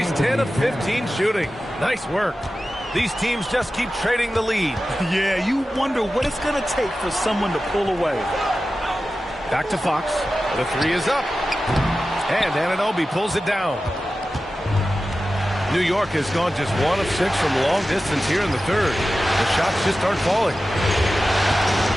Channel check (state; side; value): normal; both; correlation 0.94